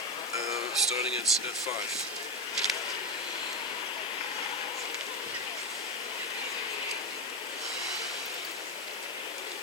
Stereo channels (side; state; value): left; noise; hiss, 15 dB below the sound